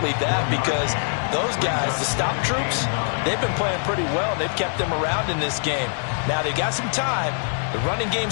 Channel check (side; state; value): right; silent; 63 dB below the other